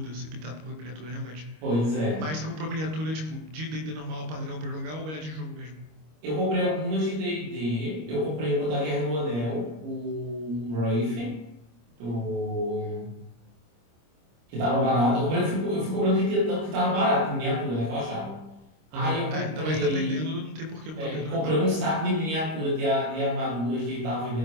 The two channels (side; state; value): left; late; 25 ms